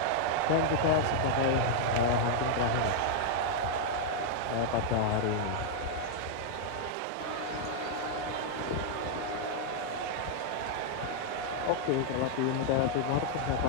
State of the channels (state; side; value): different; both; correlation -0.01